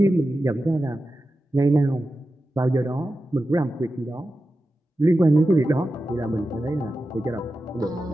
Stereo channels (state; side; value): normal; both; correlation 0.92